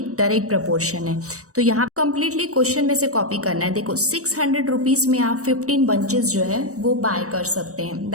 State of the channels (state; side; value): late; left; 0.66 ms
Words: डायरेक्ट प्रपोर्शन है। तो यहाँ कम्प्लीटली क्वेश्चन में से कॉपी करना है। देखो 600 रुपीज़ में आप 15 बंचेस जो है वो बाय कर सकते हैं।